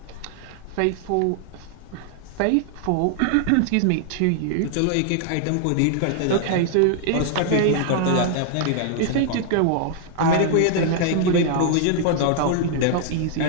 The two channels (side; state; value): both; different; correlation 0.00